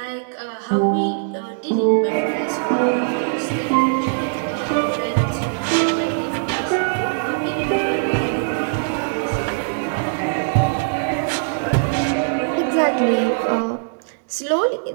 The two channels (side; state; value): left; silent; digital silence